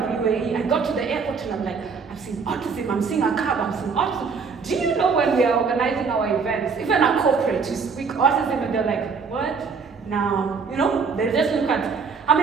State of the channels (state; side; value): quieter; left; 5.3 dB